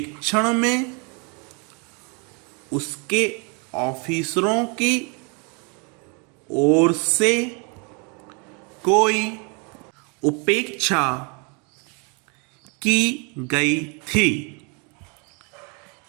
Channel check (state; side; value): quieter; left; 34.1 dB